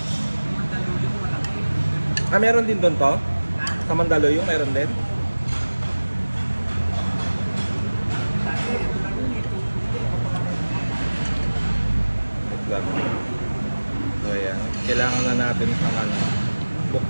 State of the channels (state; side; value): inverted; both; correlation -1.00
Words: Meron din doon to? Sa Mandaluyong, meron din? Wait lang. So, ayan. Kailangan na natin sa